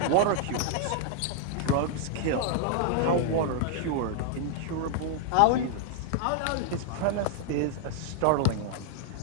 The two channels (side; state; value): both; different; correlation -0.01